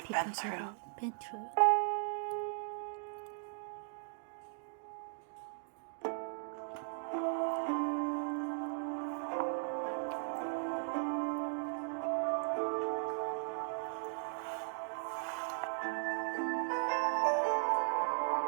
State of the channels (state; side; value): silent; left; digital silence